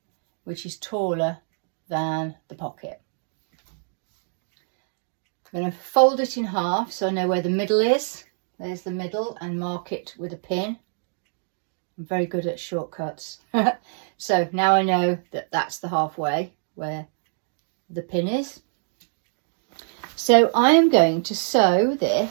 which is taller than the pocket. I'm going to fold it in half so I know where the middle is. There's the middle, and mark it with a pin. I'm very good at shortcuts. So now I know that that's the halfway where the pin is. So I am going to sew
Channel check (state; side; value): silent; left; digital silence